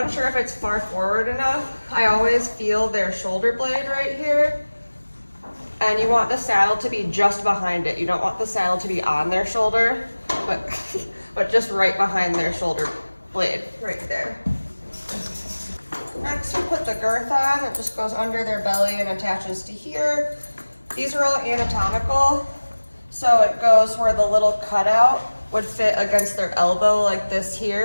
if it's far forward enough, I always feel their shoulder blade right here, and you want the saddle to be just behind it. You don't want the saddle to be on their shoulder, but just right behind their shoulder blade, right there. Next we put the girth on. It just goes under their belly and attaches to here. These are all anatomical, so it goes where the little cutout would fit against their elbow like this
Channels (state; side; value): inverted; both; correlation -1.00